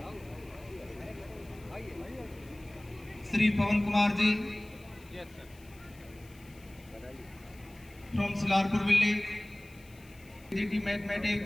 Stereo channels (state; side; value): noise; left; hiss, 25 dB below the sound